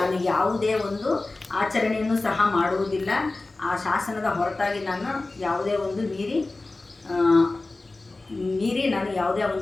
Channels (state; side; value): quieter; right; 3.2 dB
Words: ಯಾವುದೇ ಒಂದು ಆಚರಣೆಯನ್ನು ಸಹ ಮಾಡುವುದಿಲ್ಲ. ಆ ಶಾಸನದ ಹೊರತಾಗಿ ನಾನು ಯಾವುದೇ ಒಂದು ಮೀರಿ ನಾನು ಯಾವುದೇ